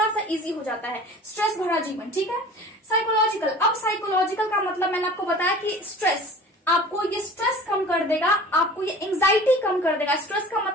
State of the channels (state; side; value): normal; both; correlation 0.42